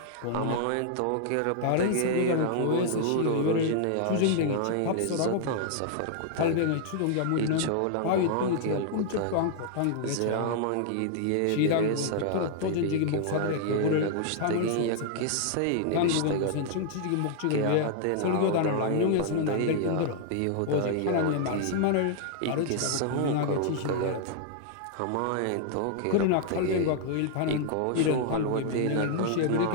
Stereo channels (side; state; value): both; different; correlation 0.00